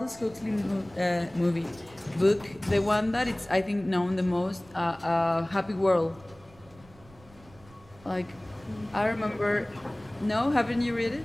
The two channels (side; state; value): right; noise; rumble, 25 dB below the sound